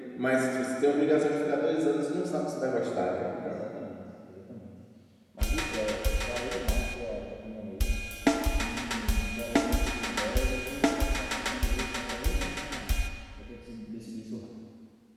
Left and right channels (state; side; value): identical; both; correlation 1.00